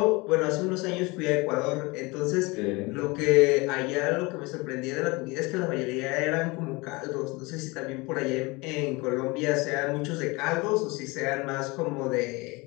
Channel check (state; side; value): quieter; right; 25.0 dB